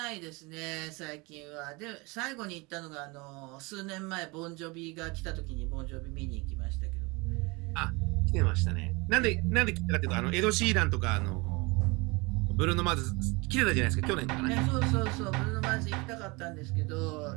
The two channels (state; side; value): quieter; left; 26.2 dB